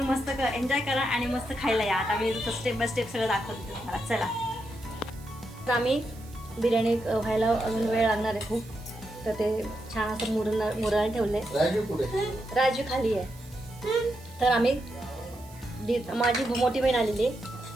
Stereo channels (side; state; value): right; noise; hiss, 23 dB below the sound